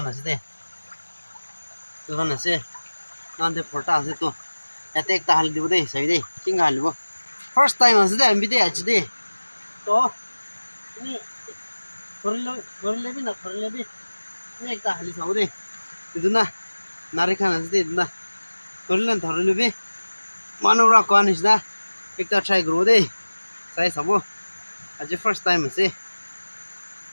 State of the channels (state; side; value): inverted; both; correlation -1.00